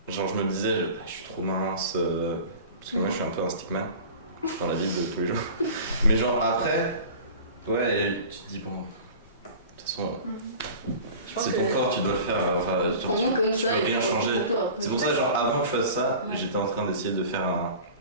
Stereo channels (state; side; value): inverted; both; correlation -0.39